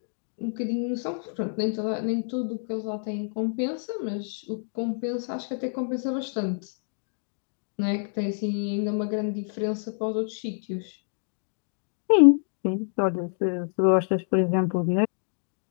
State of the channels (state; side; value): silent; right; digital silence